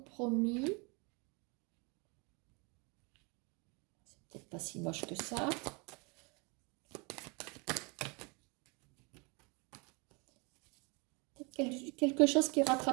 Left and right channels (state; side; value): quieter; left; 30.9 dB